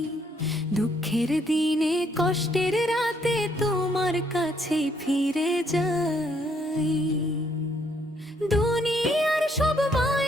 দুঃখের দিনে কষ্টের রাতে তোমার কাছে ফিরে যাই। দুনিয়ার সব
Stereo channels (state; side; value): normal; both; correlation 0.70